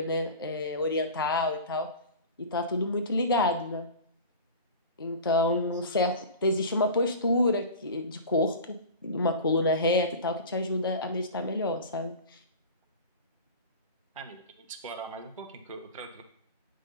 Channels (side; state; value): both; inverted; correlation -0.34